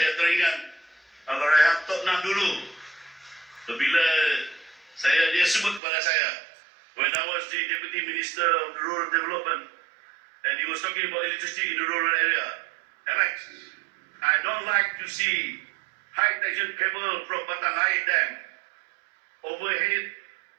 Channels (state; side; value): drops out; left; at 5.8 s